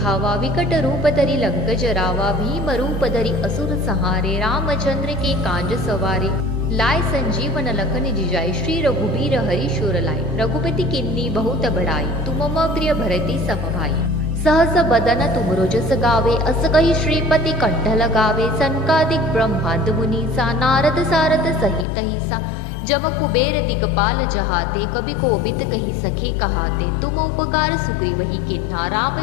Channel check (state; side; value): drops out; right; at 21.9 s